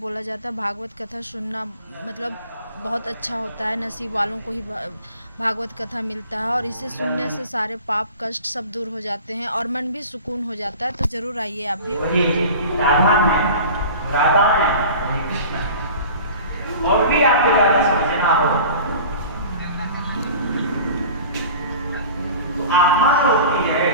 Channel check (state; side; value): inverted; both; correlation -0.40